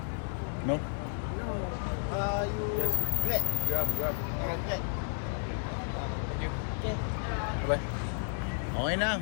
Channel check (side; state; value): right; silent; digital silence